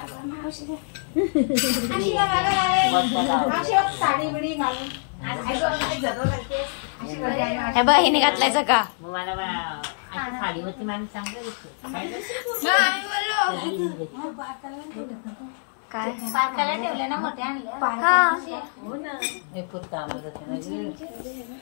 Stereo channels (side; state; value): right; silent; 62 dB below the other